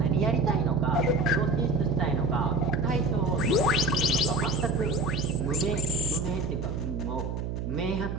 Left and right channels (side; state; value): right; noise; hum, 4 dB below the sound